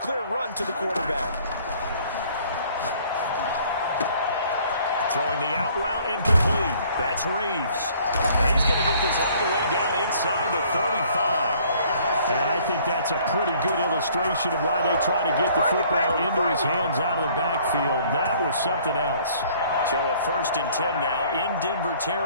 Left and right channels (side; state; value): both; inverted; correlation -0.58